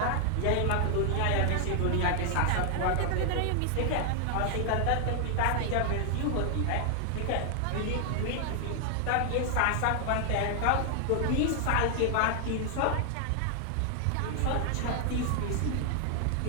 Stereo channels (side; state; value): both; different; correlation 0.00